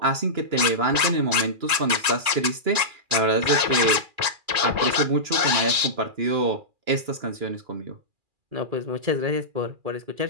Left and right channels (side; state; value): left; late; 2.4 ms